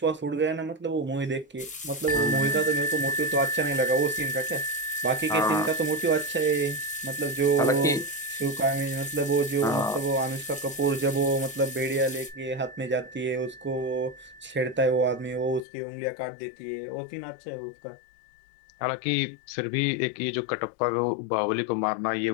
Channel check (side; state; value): right; drops out; at 15.7 s